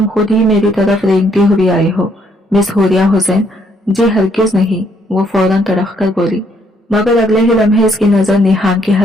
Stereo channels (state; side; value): normal; both; correlation 0.70